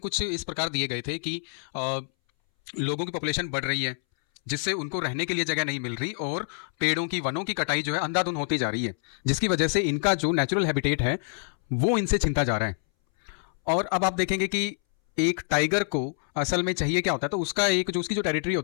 इस प्रकार दिए गए थे कि लोगों की पॉपुलेशन बढ़ रही है जिससे उनको रहने के लिए जगह नहीं मिल रही और पेड़ों की वनों की कटाई जो है अंधाधुंध होती जा रही है, जिसकी वजह से इनका जो नेचुरल हैबिटेट है वो इनसे छिनता जा रहा है। और अब आप देखेंगे कि एक टाइगर को असल में चाहिए क्या होता है, तो उसका एक जो उसकी जो टेरिटरी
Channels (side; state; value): right; silent; 60 dB below the other